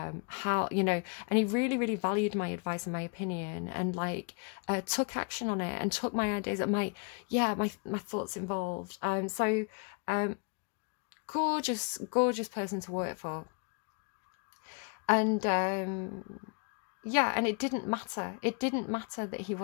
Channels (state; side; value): quieter; right; 35.0 dB